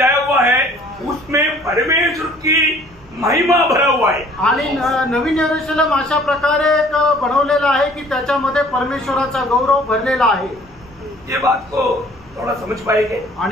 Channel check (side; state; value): right; noise; hum, 27 dB below the sound